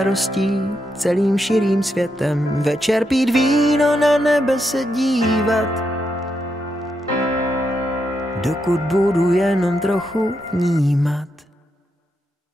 celým širým světem. Večer pít víno, na nebe se dívat, dokud budu jenom trochu vnímat.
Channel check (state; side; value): normal; both; correlation 0.82